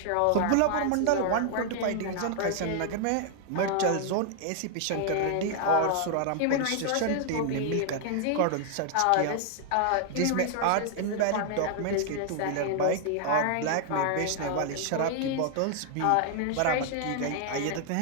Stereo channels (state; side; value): different; both; correlation 0.00